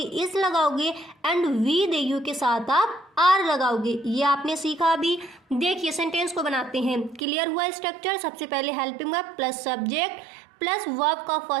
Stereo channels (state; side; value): drops out; left; at 7.2 s